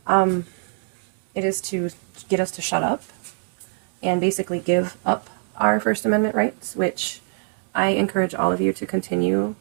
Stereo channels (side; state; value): left; silent; digital silence